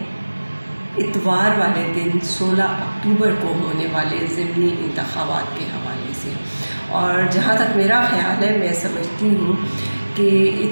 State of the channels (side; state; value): both; inverted; correlation -1.00